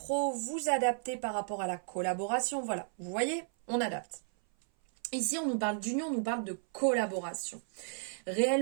vous adaptez par rapport à la collaboration. Voilà, vous voyez, on adapte. Ici, on nous parle d'union, on nous parle de collaboration.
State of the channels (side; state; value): left; silent; 55 dB below the other